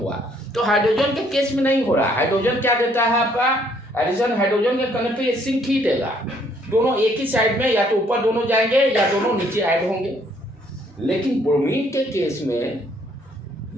तो हाइड्रोजन के केस में नहीं हो रहा। हाइड्रोजन क्या देता है आपका एडिशन, हाइड्रोजन के करने पे ये सिंक ही देगा। दोनों एक ही साइड में, या तो ऊपर दोनों जाएंगे या दोनों नीचे ऐड होंगे। लेकिन ब्रोमीन के केस में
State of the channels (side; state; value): both; normal; correlation 0.66